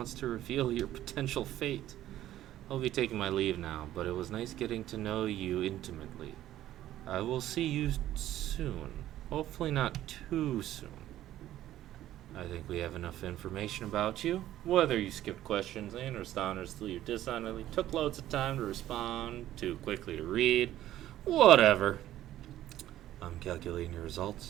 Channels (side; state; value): left; quieter; 13.3 dB